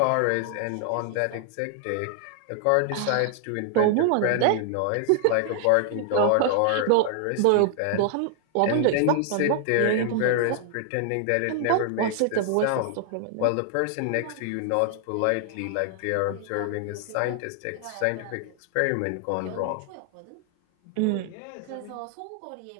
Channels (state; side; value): different; both; correlation 0.00